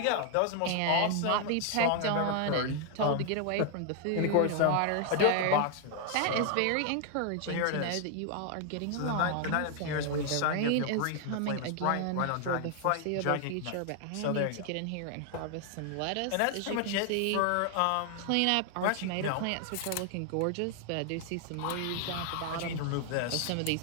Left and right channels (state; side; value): different; both; correlation 0.00